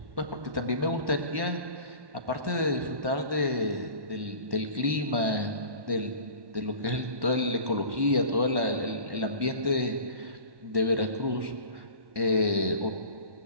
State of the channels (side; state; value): left; late; 1.1 ms